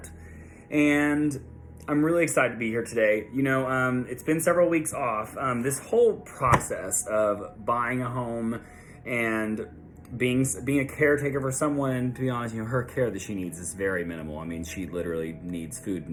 And I'm really excited to be here today. It's been several weeks off. This whole process of buying a home and being a caretaker for someone, to be honest, her care that she needs is very minimal. I mean, she literally needs food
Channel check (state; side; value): identical; both; correlation 1.00